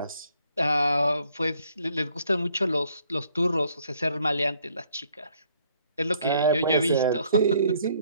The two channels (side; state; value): both; inverted; correlation -0.65